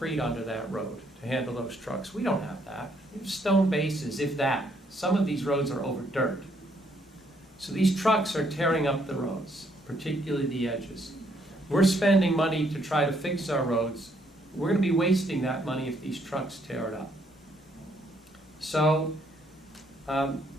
under that road to handle those trucks. We don't have that. We have stone bases, if that. Some of these roads are over dirt. So these trucks are tearing up the roads, particularly the edges. We're spending money to try to fix our roads. We're going to be wasting that money if these trucks tear it up. So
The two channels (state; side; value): normal; both; correlation 0.70